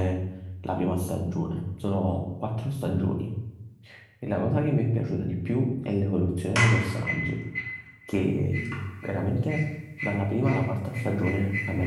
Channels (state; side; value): identical; both; correlation 1.00